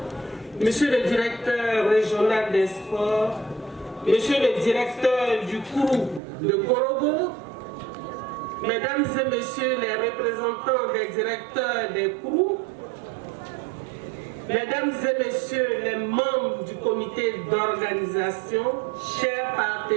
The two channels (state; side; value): drops out; left; at 6.2 s